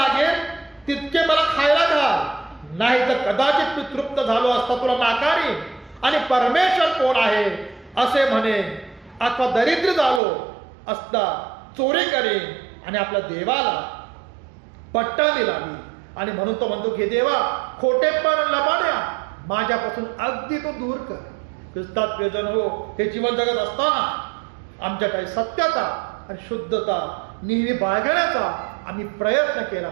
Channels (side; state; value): left; drops out; at 10.2 s